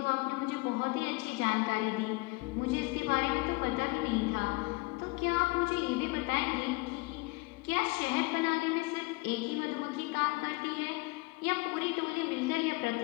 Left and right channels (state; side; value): quieter; right; 24.9 dB